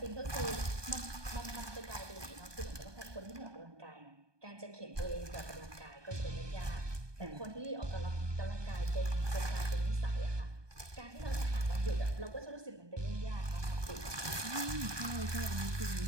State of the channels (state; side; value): late; left; 1.2 ms